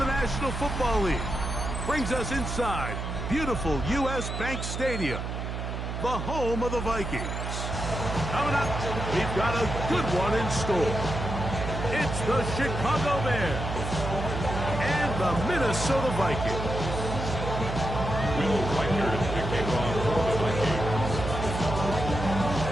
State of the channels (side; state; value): right; noise; hum, 5 dB below the sound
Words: National Football League brings us inside beautiful U.S. Bank Stadium, the home of the Vikings. Coming up, we've got a good one in store. It's the Chicago Bears and the Minnesota Vikings. Will Reichert kicking off for the Vikings.